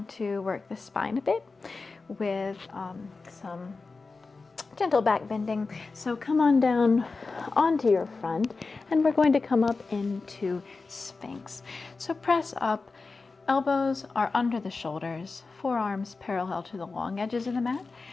to work the spine a bit with some gentle back bending. So come on down onto your front, and we're going to come up into Sphinx. So press up, elbows are under the shoulders, forearms parallel to the long edges of the mat,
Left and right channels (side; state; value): right; quieter; 4.0 dB